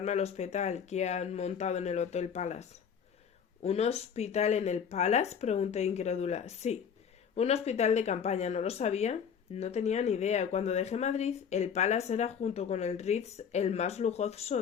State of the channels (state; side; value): quieter; right; 7.3 dB